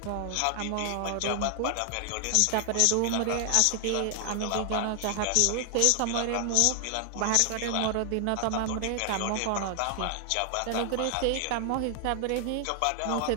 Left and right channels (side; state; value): both; different; correlation 0.00